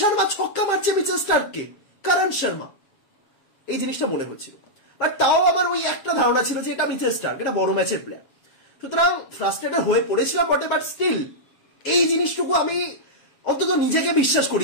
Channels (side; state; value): right; late; 7.2 ms